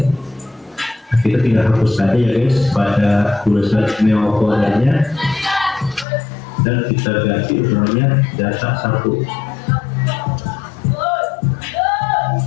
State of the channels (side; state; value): right; drops out; at 6.1 s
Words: kita tinggal hapus saja ya guys pada tulisan Neo foldernya dan kita ganti namanya data 1.